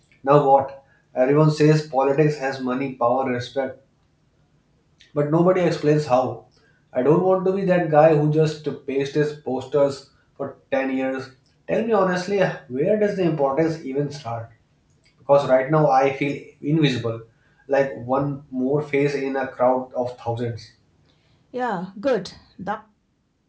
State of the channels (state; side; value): identical; both; correlation 1.00